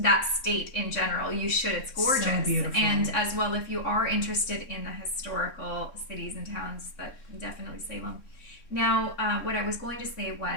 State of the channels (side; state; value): right; late; 3.6 ms